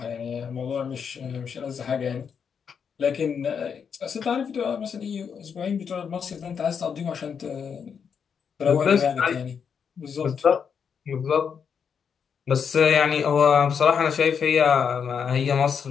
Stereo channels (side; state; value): right; quieter; 6.9 dB